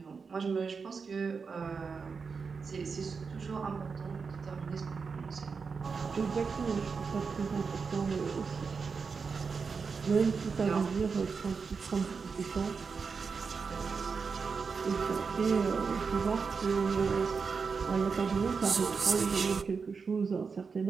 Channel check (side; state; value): left; quieter; 5.3 dB